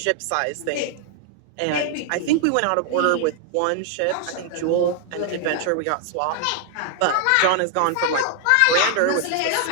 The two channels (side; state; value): both; different; correlation 0.00